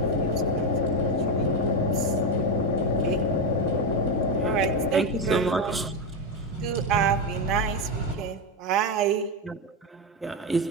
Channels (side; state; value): both; normal; correlation 0.10